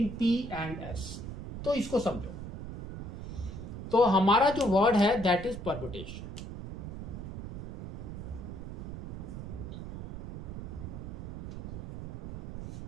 P and S. तो इसको समझो. तो हमारा जो वर्ड है दैट इज परम्यूटेशन.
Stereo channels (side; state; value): right; noise; rumble, 8 dB below the sound